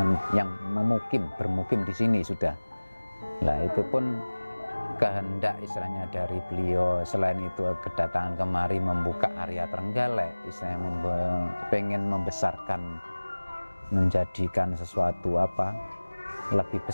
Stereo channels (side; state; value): both; inverted; correlation -1.00